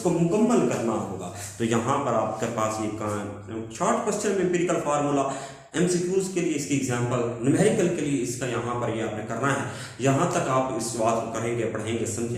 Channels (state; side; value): identical; both; correlation 1.00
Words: मुकम्मल करना होगा। तो यहाँ पर आपके पास ये शॉर्ट क्वेश्चन में एम्पिरिकल फार्मूला, एमसीक्यूज के लिए इसकी एग्जांपल, न्यूमेरिकल के लिए इसका यहाँ पर ये आपने करना है। यहाँ तक आप इस बात को करेंगे, पढ़ेंगे,